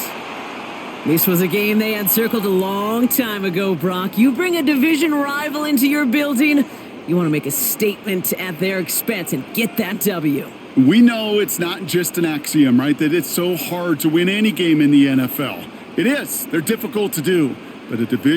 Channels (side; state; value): both; identical; correlation 1.00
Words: This was a game they had circled a long time ago, Brock. You bring a division rival into your building, you want to make a statement at their expense and get that W. We know it's not just an axiom, right, that it's so hard to win any game in the NFL. It is. They're difficult to do. But a